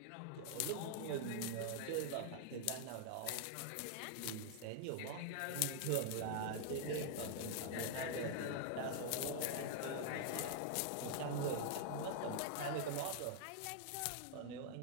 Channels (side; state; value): both; different; correlation 0.00